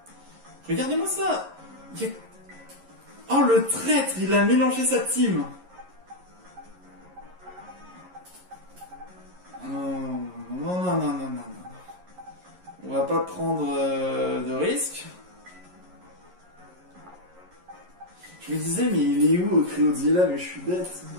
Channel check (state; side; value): late; left; 11 ms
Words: Regardez-moi ça. Il y a... Oh, le traître, il a mélangé sa team. Non, non, non, non, non, non, non. On va pas prendre de risques. Je me disais, mais il est où au Cryodzilla? Mais je suis bête.